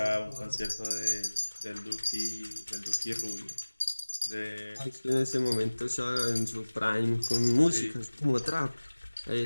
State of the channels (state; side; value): inverted; both; correlation -1.00